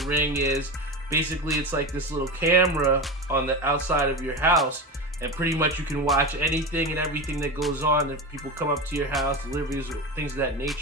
ring is. Basically, it's like this little camera on the outside of your house, and pretty much you can watch anything and everything that goes on if people come up to your house, deliveries, or things of that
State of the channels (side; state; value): both; normal; correlation 0.22